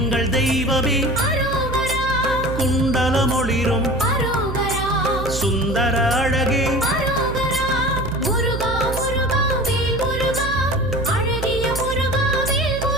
தெய்வமே குண்டலமொளிரும் சுந்தர அழகே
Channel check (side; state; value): right; noise; hum, 6 dB below the sound